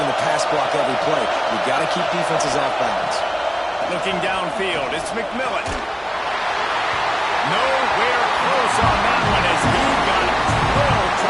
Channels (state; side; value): identical; both; correlation 1.00